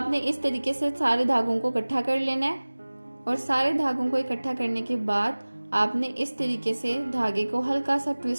इस तरीके से सारे धागों को इकट्ठा कर लेना है और सारे धागों को इकट्ठा करने के बाद आपने इस तरीके से धागे को हल्का सा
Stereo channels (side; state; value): both; inverted; correlation -1.00